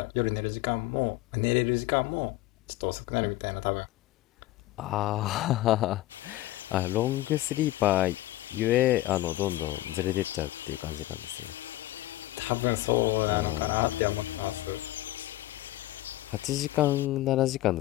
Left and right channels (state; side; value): quieter; right; 16.4 dB